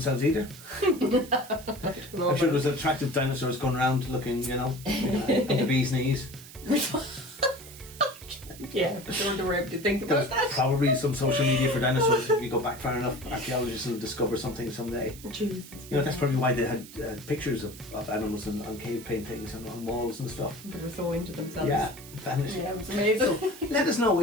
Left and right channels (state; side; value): noise; right; hiss, 17 dB below the sound